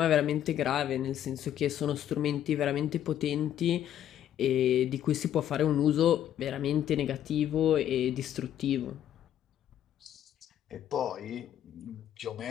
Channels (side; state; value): right; quieter; 10.9 dB